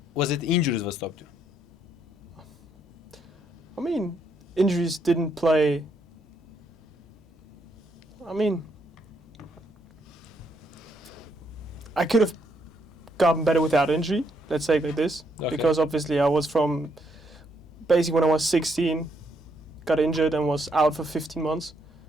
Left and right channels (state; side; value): normal; both; correlation 0.74